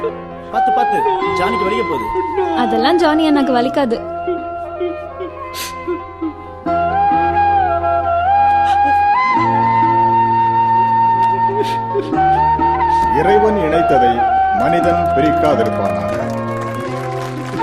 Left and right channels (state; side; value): identical; both; correlation 1.00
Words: பாத்து பாத்து, ஜானிக்கு வலிக்க போகுது. அதெல்லாம் ஜானி எனக்கு வலிக்காது. இறைவன் இணைத்ததை மனிதன் பிரிக்காதிருப்பானாக.